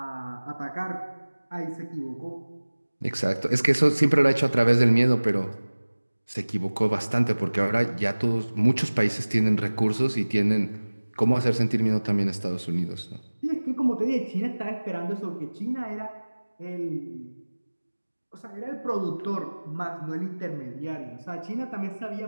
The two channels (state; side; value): inverted; both; correlation -1.00